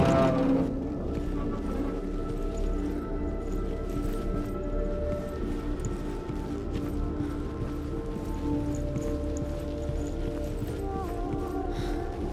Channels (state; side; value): identical; both; correlation 1.00